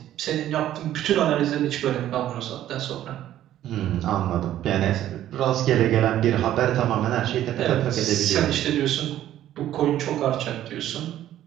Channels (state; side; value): quieter; left; 12.4 dB